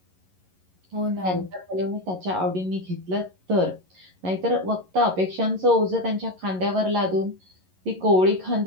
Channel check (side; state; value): left; late; 11 ms